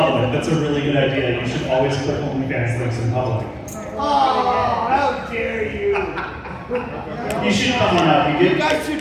That's a really good idea. You should always click OnlyFans links in public. Oh, how dare you! You should come on up. You guys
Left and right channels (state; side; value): identical; both; correlation 1.00